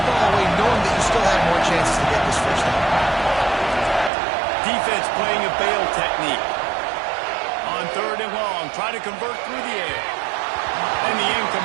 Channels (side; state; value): left; drops out; at 4.1 s